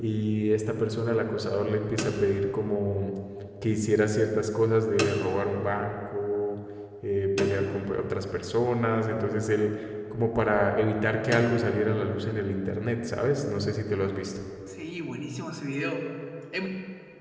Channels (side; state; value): both; identical; correlation 1.00